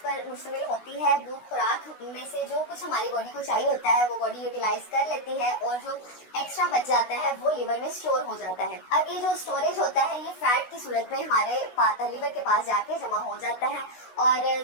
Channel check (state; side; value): late; right; 16 ms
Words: मुश्तमिल होती है, वो खुराक में से जो कुछ हमारी बॉडी को चाहिए होता है वो बॉडी यूटिलाइज कर लेती है और जो एक्स्ट्रा बच जाता है वो लिवर में स्टोर हो जाता है। अब ये जो स्टोरेज होता है ये फैट की सूरत में हमारे लिवर के पास जाके जमा हो जाता है और